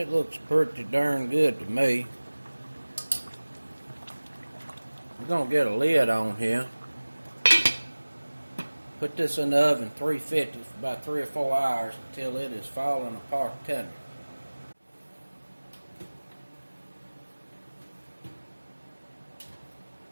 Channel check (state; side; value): inverted; both; correlation -1.00